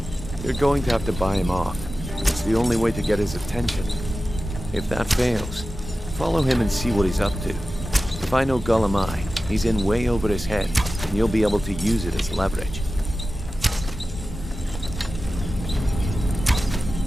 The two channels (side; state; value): both; normal; correlation 0.94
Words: You're going to have to buy him off. It's the only way to get his attention. If that fails, follow him and see what he's up to. If I know Gullem-Ei, he's in way over his head, and you'll be able to use it as leverage.